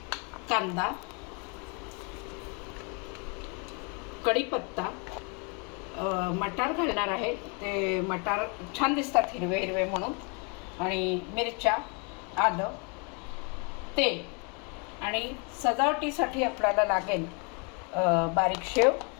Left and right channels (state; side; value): quieter; right; 34.6 dB